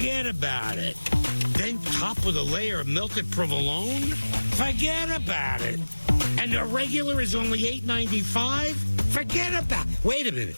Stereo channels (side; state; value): both; inverted; correlation -1.00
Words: about it. Then topped with a layer of melted provolone? Forget about it. And the regular is only $8.95? Forget about it. Wait a minute.